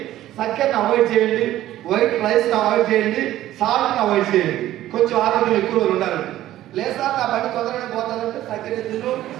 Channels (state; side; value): quieter; left; 13.9 dB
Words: చక్కెరని అవాయిడ్ చేయండి, వైట్ రైస్ని అవాయిడ్ చేయండి, సాల్ట్ని అవాయిడ్ చేయండి, కొంచెం ఆరోగ్యం ఎక్కువ రోజులు ఉండాలండి. లేదా నా పని తొందరగా పోతానంటే చక్కెర తిను,